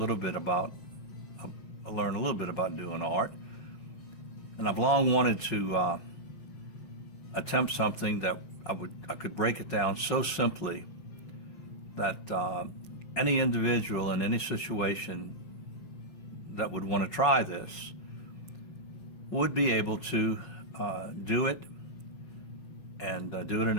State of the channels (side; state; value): right; late; 5.9 ms